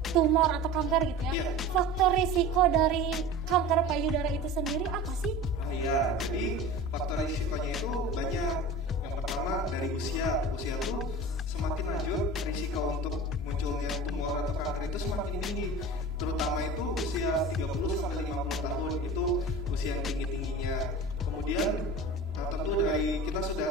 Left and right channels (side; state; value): both; normal; correlation 0.35